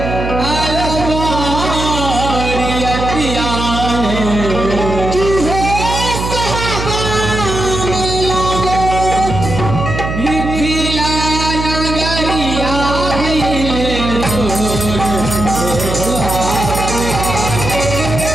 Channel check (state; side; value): noise; right; hum, 4 dB below the sound